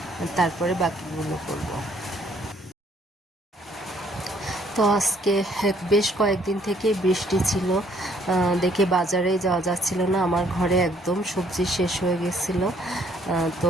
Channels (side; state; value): both; normal; correlation 0.64